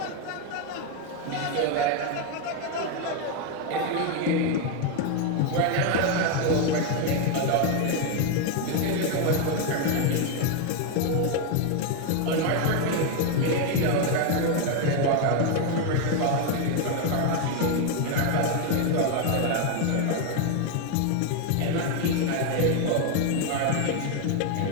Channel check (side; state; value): both; different; correlation 0.01